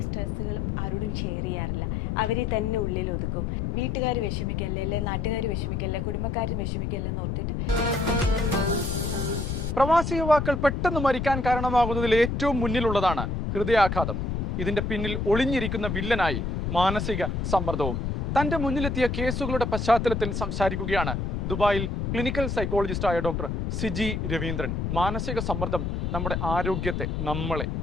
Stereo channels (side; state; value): left; noise; rumble, 1 dB below the sound